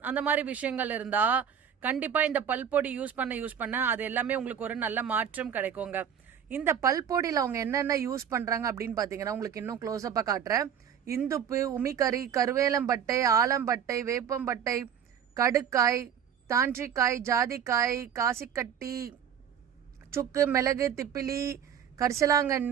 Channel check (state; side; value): quieter; left; 8.4 dB